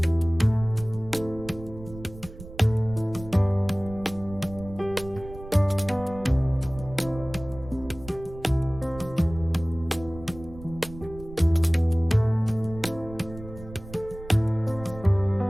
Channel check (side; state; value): right; noise; rumble, 15 dB below the sound